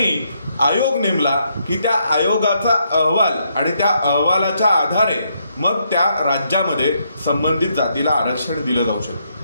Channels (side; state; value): both; inverted; correlation -0.76